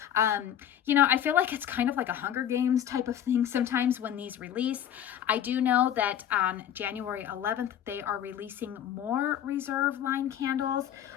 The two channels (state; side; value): quieter; right; 10.2 dB